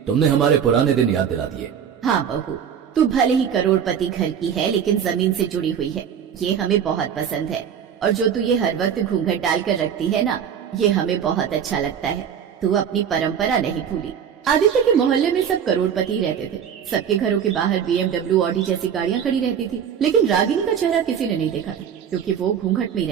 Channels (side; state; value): left; quieter; 8.2 dB